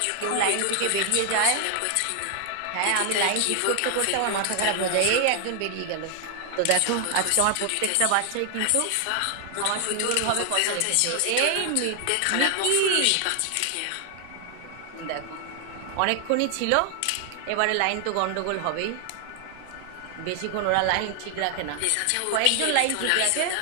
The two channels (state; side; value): different; both; correlation 0.00